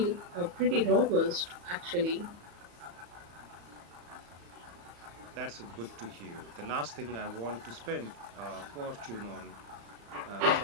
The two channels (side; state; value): left; late; 34 ms